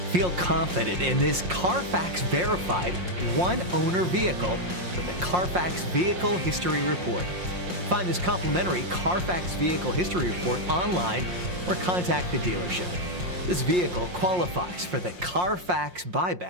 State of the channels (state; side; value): late; left; 5.6 ms